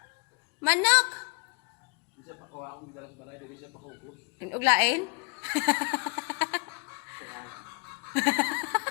Manok! Di siya pa kuha akong dalas balay, di siya pa kuha. Uglain?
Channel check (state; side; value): quieter; right; 35.5 dB